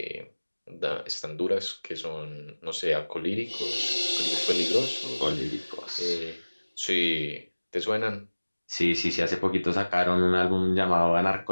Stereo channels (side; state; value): both; inverted; correlation -1.00